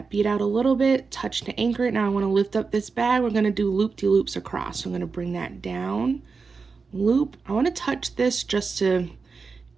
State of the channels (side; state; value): left; quieter; 4.8 dB